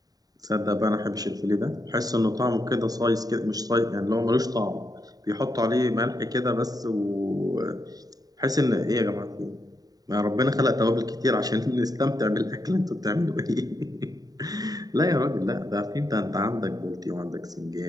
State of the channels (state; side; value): late; left; 0.18 ms